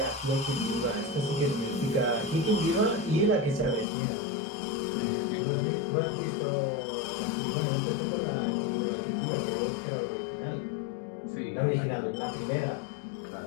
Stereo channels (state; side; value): drops out; right; at 3.9 s